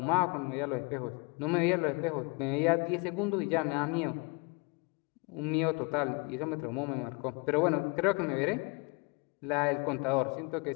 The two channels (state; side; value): quieter; right; 30.2 dB